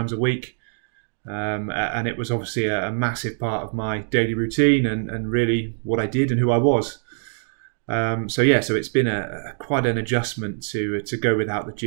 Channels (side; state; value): left; silent; digital silence